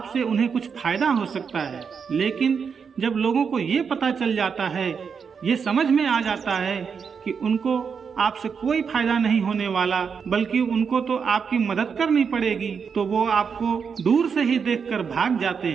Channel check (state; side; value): quieter; left; 6.2 dB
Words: उन्हें कुछ फायदा हो सकता है। लेकिन जब लोगों को ये पता चल जाता है, ये समझ में आ जाता है कि उनको आपसे कोई फायदा नहीं होने वाला, बल्कि उनको तो आपकी मदद करनी पड़ेगी, तो वो आपको दूर से ही देखकर भाग जाते